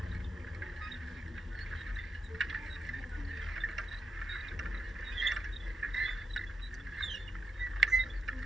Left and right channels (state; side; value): normal; both; correlation 0.84